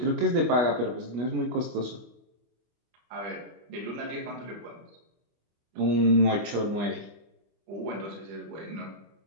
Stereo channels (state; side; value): late; left; 25 ms